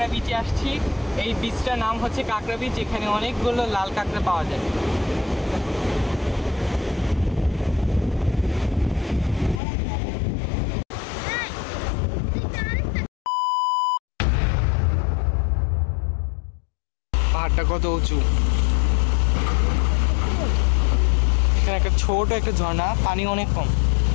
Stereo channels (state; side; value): drops out; right; at 9.6 s